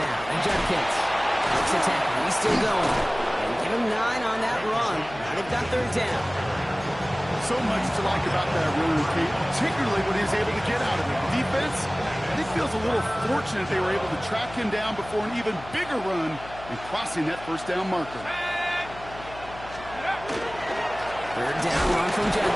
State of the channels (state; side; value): noise; left; hum, 16 dB below the sound